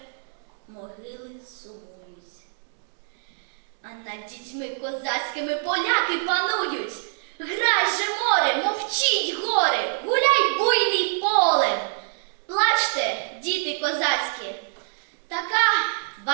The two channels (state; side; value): silent; left; digital silence